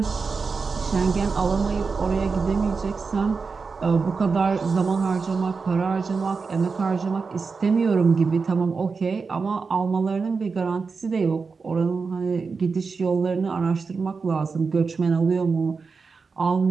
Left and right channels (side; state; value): left; quieter; 4.8 dB